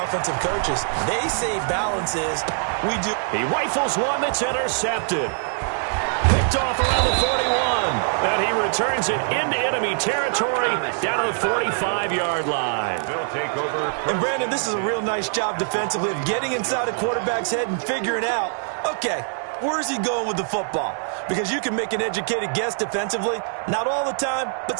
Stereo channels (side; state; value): left; silent; 63 dB below the other